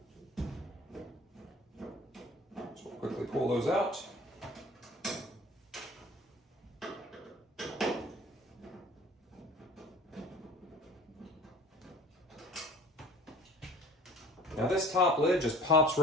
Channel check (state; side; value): normal; both; correlation 0.46